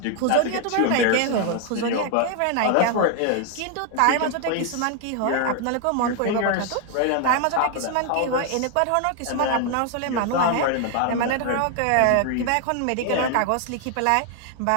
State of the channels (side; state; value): both; different; correlation 0.00